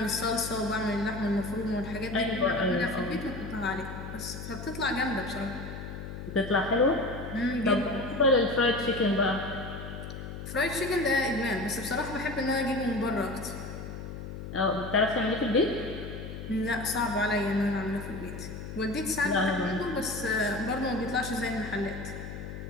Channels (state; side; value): noise; left; hum, 9 dB below the sound